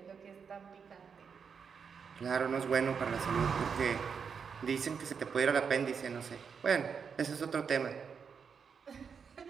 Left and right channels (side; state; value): left; quieter; 6.3 dB